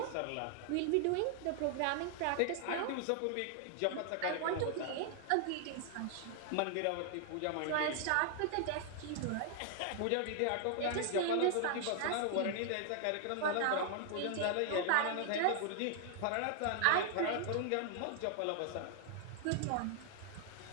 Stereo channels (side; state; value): both; different; correlation 0.00